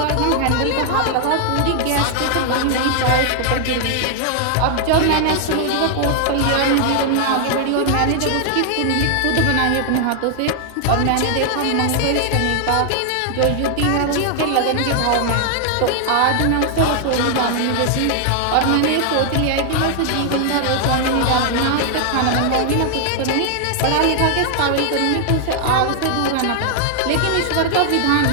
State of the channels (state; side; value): different; both; correlation 0.00